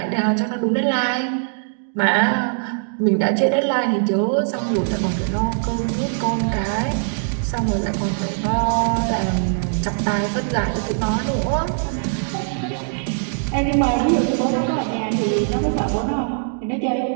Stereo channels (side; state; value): left; silent; digital silence